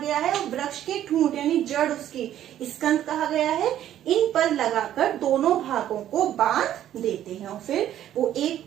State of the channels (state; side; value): quieter; left; 11.6 dB